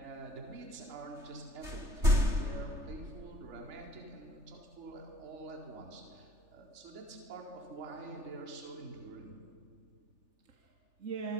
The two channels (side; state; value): left; late; 3.3 ms